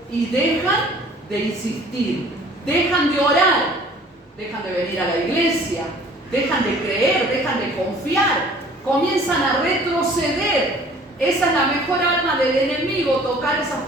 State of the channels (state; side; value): normal; both; correlation 0.52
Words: y dejan de insistir, dejan de orar, dejan de venir a la iglesia, dejan de creer, dejan de confiar, comienzan a retroceder. Esa es la mejor arma del enemigo, tocar a esas